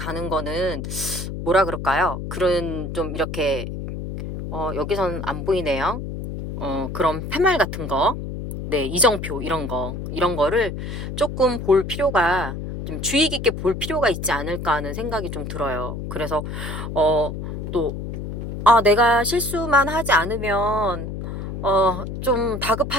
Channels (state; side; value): noise; left; hum, 6 dB below the sound